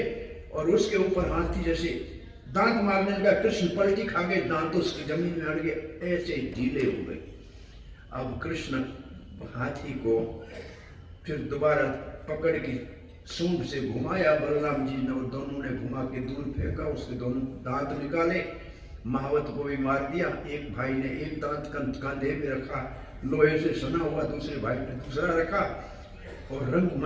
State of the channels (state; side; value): identical; both; correlation 1.00